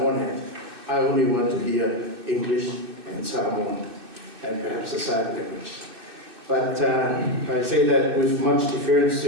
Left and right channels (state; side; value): late; left; 2.6 ms